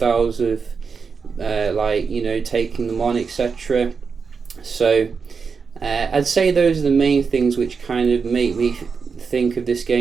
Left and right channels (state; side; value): quieter; left; 5.4 dB